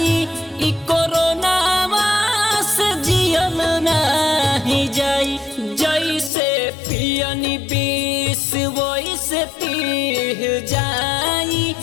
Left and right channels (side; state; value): right; drops out; at 6.3 s